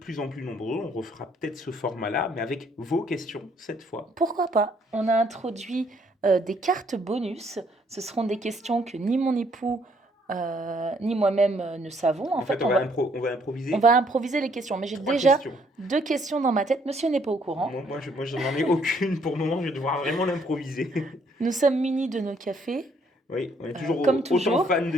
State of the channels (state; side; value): normal; both; correlation 0.67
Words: en plus nombreux, on refera peut-être ce format-là, mais avec vos questions cette fois. Pourquoi pas? On a introduit des cartes bonus. Ce seront des questions que ni mon époux ni moi-même ne savons. En En fait, fait, on va on improviser va improviser les questions. Mais j'ai trois déjà questions. 2 questions dans ma tête. Monsieur n'est pas au courant. Moi, je n'en ai aucune pour le moment, je vais devoir vraiment l'improviser. Nous sommes munis de nos cafés, Oui, on est comme toujours autant toujours. fan de